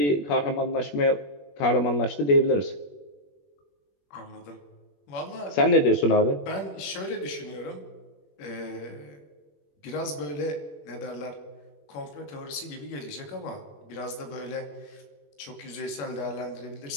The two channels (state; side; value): late; right; 21 ms